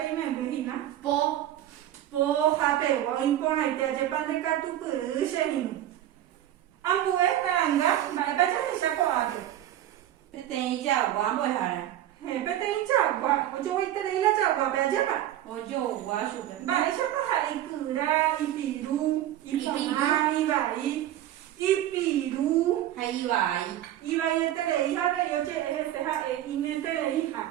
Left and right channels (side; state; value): left; quieter; 12.5 dB